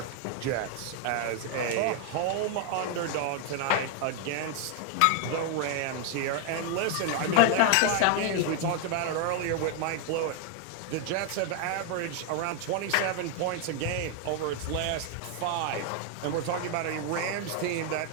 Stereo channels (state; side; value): different; both; correlation 0.00